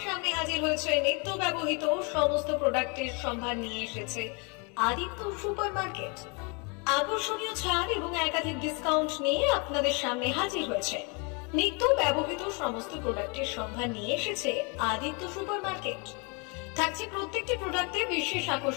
সামনে হাজির হয়েছে। নিত্য ব্যবহৃত সমস্ত প্রোডাক্টের সম্ভার নিয়ে এসেছে আদিত্য সুপার মার্কেট। আকর্ষণীয় ছাড় এবং একাধিক ডিসকাউন্ট নিয়ে আপনাদের সামনে হাজির হয়েছে। নিত্য ব্যবহৃত সমস্ত প্রোডাক্টের সম্ভার নিয়ে এসেছে আদিত্য সুপার মার্কেট। থাকছে প্রত্যেকটি প্রোডাক্টে বিশেষ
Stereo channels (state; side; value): quieter; right; 32.8 dB